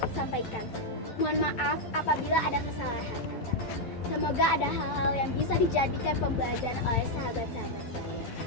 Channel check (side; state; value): right; late; 11 ms